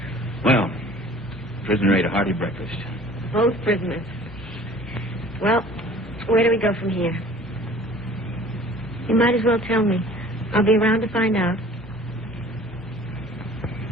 Well, prisoner ate a hearty breakfast. Both prisoners. Well, where do we go from here? You might as well tell me. I'll be around to find out.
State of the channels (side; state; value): both; normal; correlation 0.48